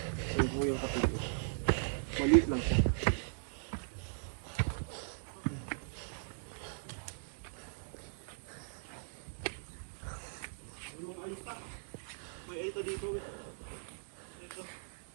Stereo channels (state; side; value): silent; left; digital silence